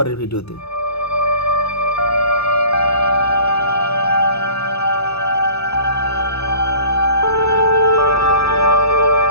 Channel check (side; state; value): right; late; 0.79 ms